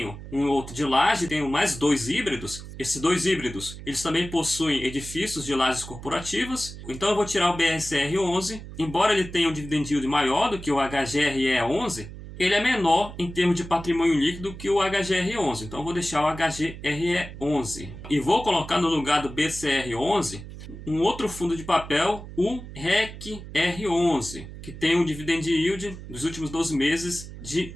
um outro de laje, tenho mais 2 híbridos. Esses 2 híbridos, eles também possuem edifícios de lajes corporativas. Então eu vou tirar o BRCR11, embora ele tenha um dividend yield maior do que o HGRE11, ele é menor em termos de patrimônio líquido que o HGR11. Então eu vou deixar o HGRE11. E vou colocar no lugar do BCR11 um outro fundo de papel, o RECR11, que tem um dividend yield dos últimos 12 meses de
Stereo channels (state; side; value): noise; right; hum, 13 dB below the sound